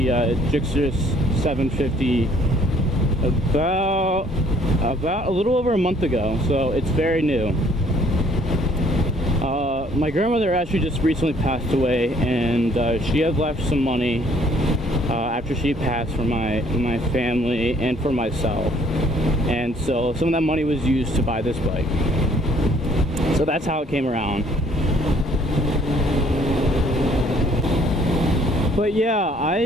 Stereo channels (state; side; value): normal; both; correlation 0.61